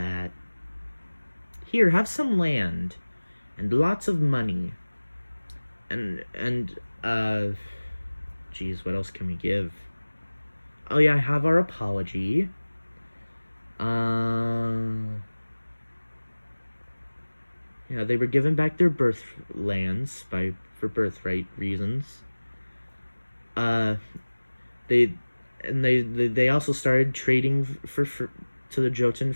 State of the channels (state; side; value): inverted; both; correlation -1.00